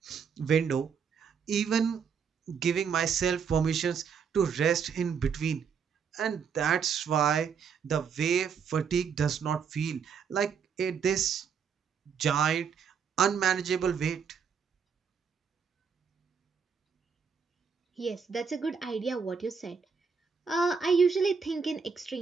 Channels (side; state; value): left; quieter; 6.4 dB